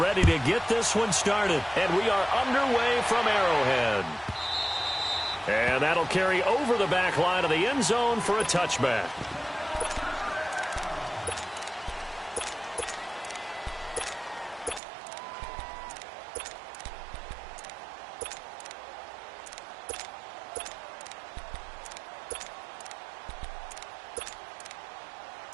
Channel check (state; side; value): drops out; left; at 14.8 s